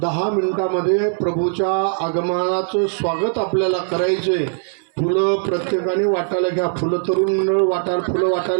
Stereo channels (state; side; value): silent; left; 66 dB below the other